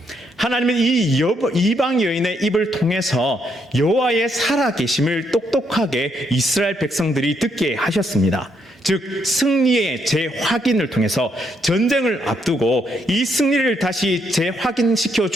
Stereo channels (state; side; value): normal; both; correlation 0.75